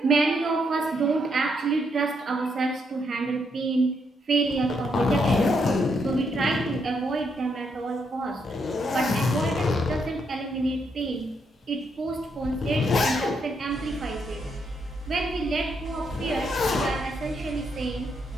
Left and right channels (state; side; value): normal; both; correlation 0.77